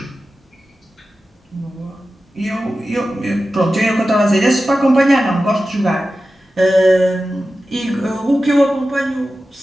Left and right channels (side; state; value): both; normal; correlation 0.94